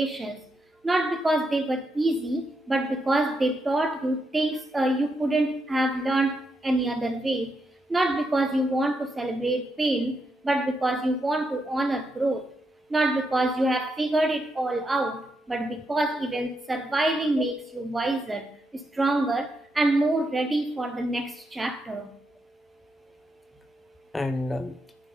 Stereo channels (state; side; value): normal; both; correlation 0.82